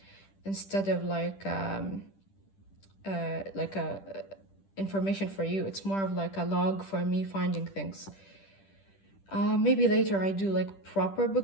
instead of like a information for you. It's more of like a log for me finding things. Maybe later I do like proper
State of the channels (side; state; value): right; late; 10 ms